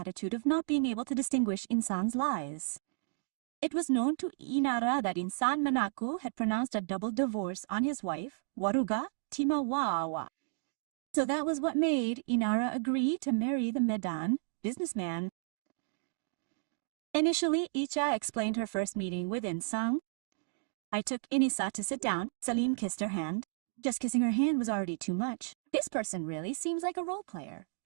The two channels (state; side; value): silent; left; digital silence